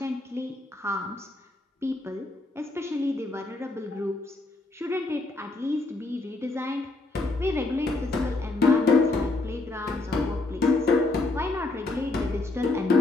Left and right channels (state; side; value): quieter; right; 3.1 dB